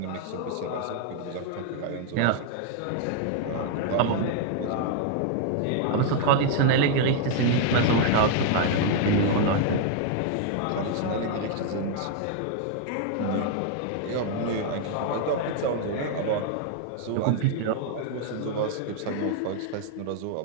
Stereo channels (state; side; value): different; both; correlation 0.00